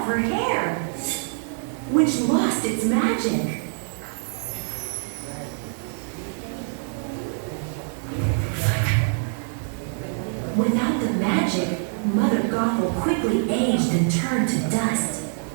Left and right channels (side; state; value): left; silent; 62 dB below the other